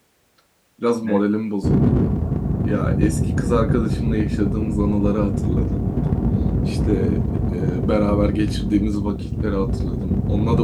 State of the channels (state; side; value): identical; both; correlation 1.00